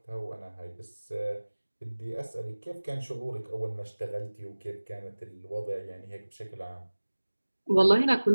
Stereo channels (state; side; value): inverted; both; correlation -1.00